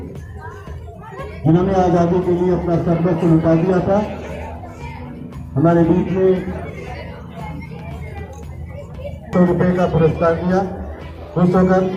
जिन्होंने आजादी के लिए अपना सर्वस्व लुटा दिया था, हमारे बीच में 100 रुपए का पुरस्कार दिया खुश होकर,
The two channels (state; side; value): identical; both; correlation 1.00